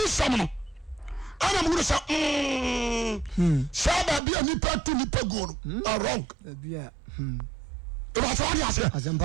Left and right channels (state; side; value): drops out; left; at 4.2 s